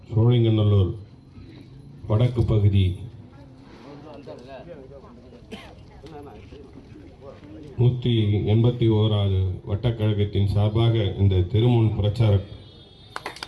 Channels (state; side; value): identical; both; correlation 1.00